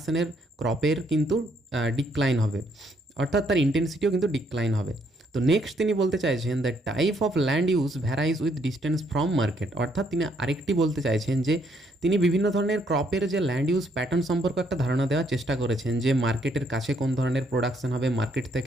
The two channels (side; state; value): both; normal; correlation 0.71